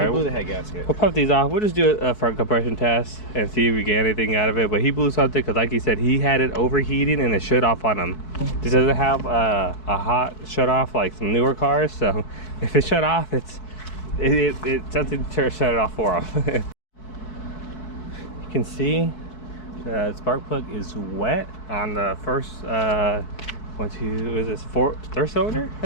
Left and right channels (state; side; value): late; right; 4.6 ms